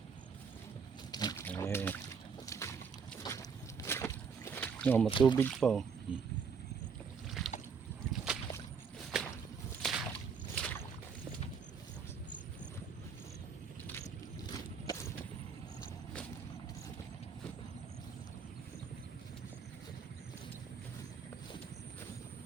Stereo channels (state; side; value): quieter; left; 5.9 dB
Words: Okay. No, matubig pa oh.